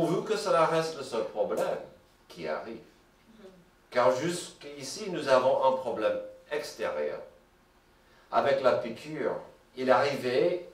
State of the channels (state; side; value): identical; both; correlation 1.00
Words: que cela reste le seul problème qui arrive. Car jusqu'ici, nous avons un problème extérieur. Avec la piqûre, il arrivait,